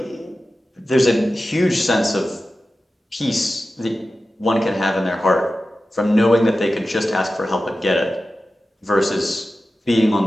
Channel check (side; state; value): both; normal; correlation 0.94